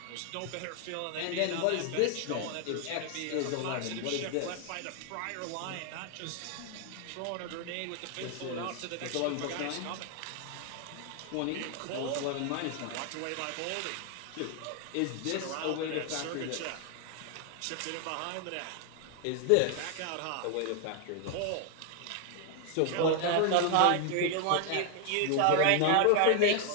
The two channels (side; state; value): both; different; correlation 0.00